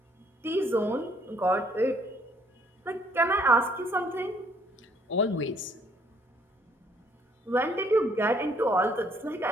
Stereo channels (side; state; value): both; normal; correlation 0.64